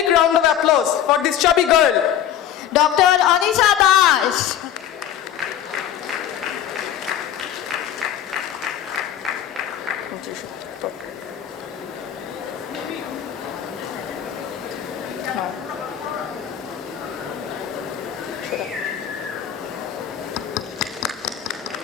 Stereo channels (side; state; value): right; quieter; 10.2 dB